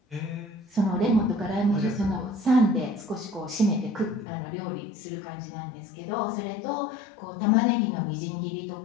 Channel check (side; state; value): right; drops out; at 4.2 s